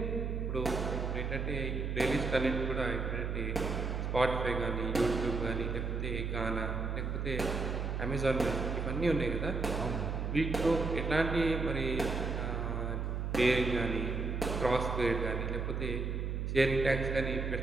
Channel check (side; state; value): right; noise; hum, 1 dB below the sound